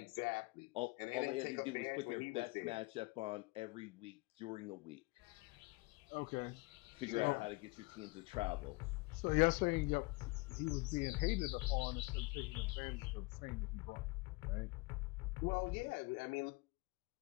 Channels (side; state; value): right; quieter; 25.2 dB